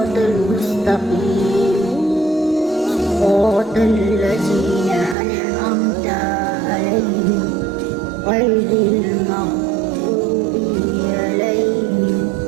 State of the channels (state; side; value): drops out; left; at 5.2 s